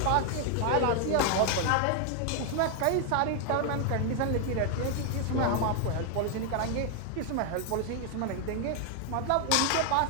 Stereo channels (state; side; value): different; both; correlation 0.00